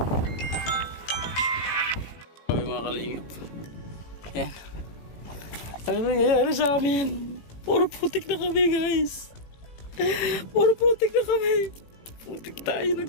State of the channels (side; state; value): right; late; 18 ms